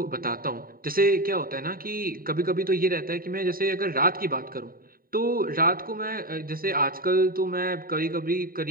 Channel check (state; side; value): late; left; 0.42 ms